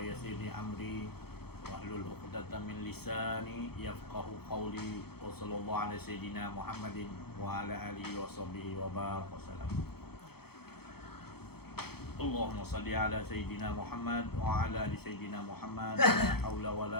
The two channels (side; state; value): right; late; 0.96 ms